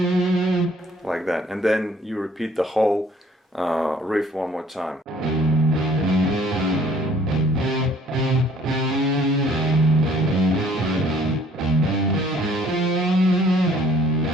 Like that, and then you repeat the whole riff one more time.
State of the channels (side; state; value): both; normal; correlation 0.58